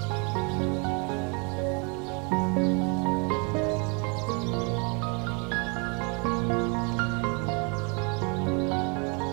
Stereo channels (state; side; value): quieter; left; 33.3 dB